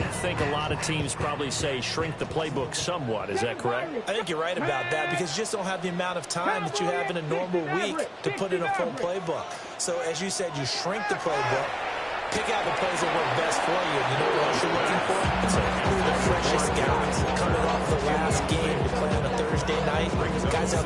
think a lot of teams probably say shrink the playbook somewhat. Is that correct? I think you're right about that because you just don't have the amount of time that you have in a normal week to put in a full playbook. So, as you said, you shrink the playbook. Pick out the plays that work best for you. You know what else you're looking for? It's the freshest guys coming off the last game to play on a Thursday night. Guys have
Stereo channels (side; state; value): both; identical; correlation 1.00